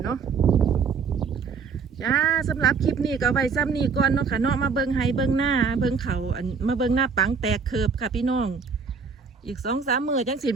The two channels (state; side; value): quieter; left; 5.6 dB